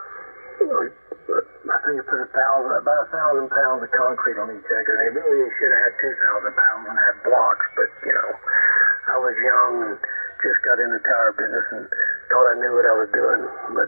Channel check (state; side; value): inverted; both; correlation -1.00